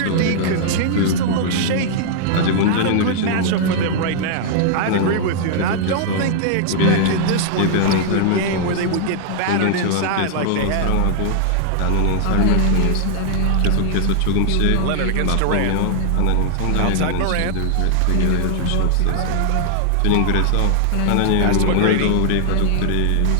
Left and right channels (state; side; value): different; both; correlation -0.01